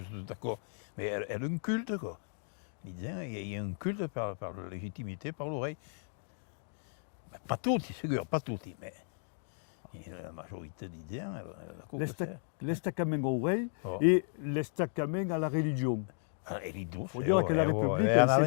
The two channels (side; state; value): right; silent; digital silence